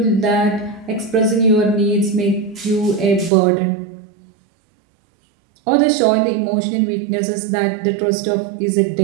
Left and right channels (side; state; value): left; drops out; at 3.3 s